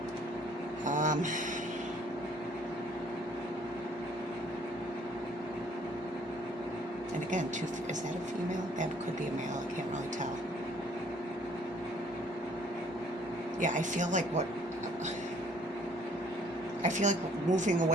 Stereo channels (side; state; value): both; normal; correlation 0.59